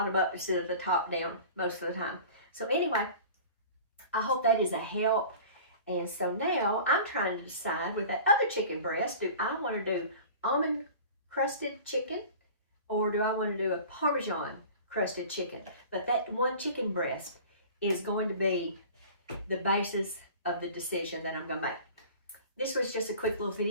up instead of the top down most of the time. So anyway, I hope that is a help. And so now I'm trying to decide with that other chicken breast, do I want to do almond crusted chicken or do I want to do a Parmesan crusted chicken? But that one chicken breast is going to be the basis of the decision that I'm going to make. This was just a quick little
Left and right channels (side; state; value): both; inverted; correlation -0.41